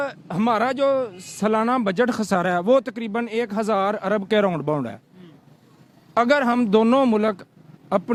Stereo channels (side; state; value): both; identical; correlation 1.00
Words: हमारा जो सालाना बजट खसारा है वो तकरीबन 1000 अरब के राउंड बाउंड है। अगर हम दोनों मुल्क